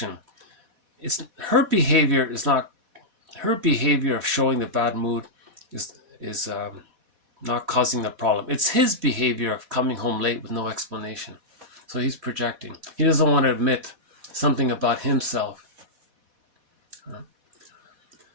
Her behavior of showing the bad mood is not causing the problem. It's his behavior of coming home late with no explanation. So he's projecting. He doesn't want to admit something about himself.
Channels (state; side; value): late; left; 4.1 ms